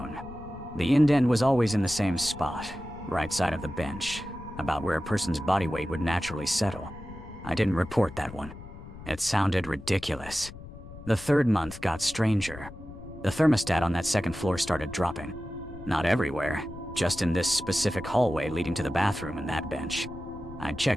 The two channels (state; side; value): noise; left; rumble, 15 dB below the sound